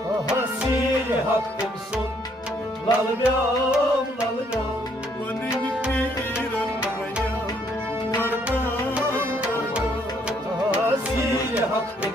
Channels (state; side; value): normal; both; correlation 0.68